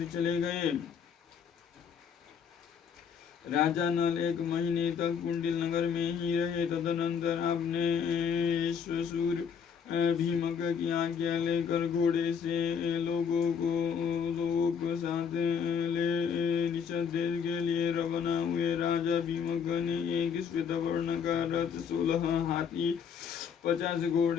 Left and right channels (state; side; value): quieter; right; 6.9 dB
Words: चले गए। राजा नल 1 महीने तक कुंडिल नगर में ही रहे। तदनंतर अपने ससुर भीमक की आज्ञा लेकर घोड़े से लोगों को साथ ले निषद देश के लिए रवाना हुए। राजा भीमक ने एक श्वेतवर्ण का रथ, 16 हाथी, 50